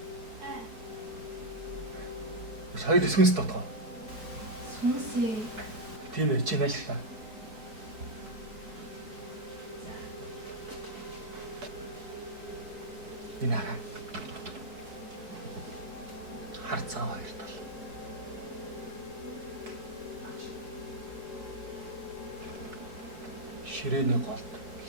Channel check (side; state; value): left; late; 4.6 ms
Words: Сая дэсгэнс дотоо. Сүнсээ. Тийм ээ, чи нааштай. Энэ хараа. Харцаа хоёр тал. Ширээний голд